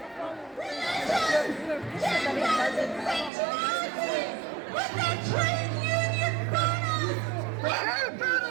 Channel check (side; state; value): left; drops out; at 3.3 s